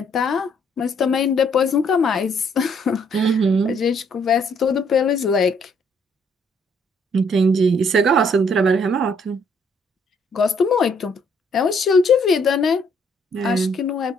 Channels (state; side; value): normal; both; correlation 0.67